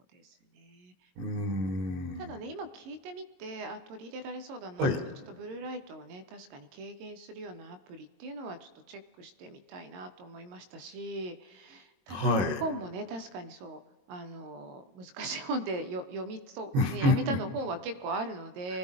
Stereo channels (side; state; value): left; late; 22 ms